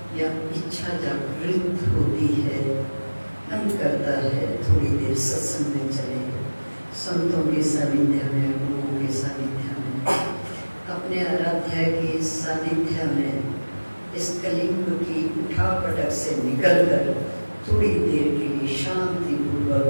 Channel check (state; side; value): inverted; both; correlation -1.00